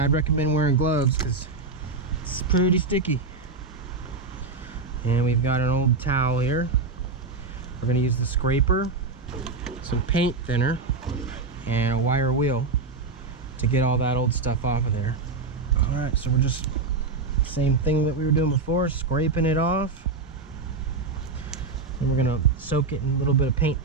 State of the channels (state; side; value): quieter; left; 3.9 dB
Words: I'd recommend wearing gloves because it's pretty sticky. And we've got an old towel here. We're going to use the scraper, some paint thinner, and a wire wheel to get all that old stuff off of there. All right, so we're just same thing that we were doing before, scraping it off. And we're gonna soak it in a little bit of paint